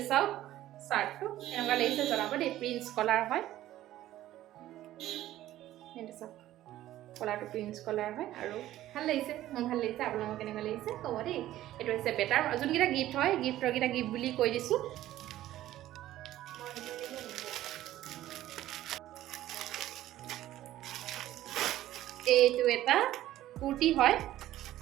চাওক চাৰ্টটো এনেকুৱা লাগিছে জনাব দেই প্ৰিন্স কলাৰ হয় এইটো চাওক কলাৰটো প্ৰিন্স কলাৰ হয় আৰু ভাল লাগিছে মোৰ ভাল লাগিছে আপোনালোকৰ কেনেকুৱা লাগিছে ক'ব দেই এইটো হৈছে বেটাৰ যোনকেইটা গিফ্ট হয় গিফ্টৰকেইটা গিফ্ট বুলি কৈ দিছোঁ এইটো এটা কুৰ্তি হয়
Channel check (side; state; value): left; quieter; 14.1 dB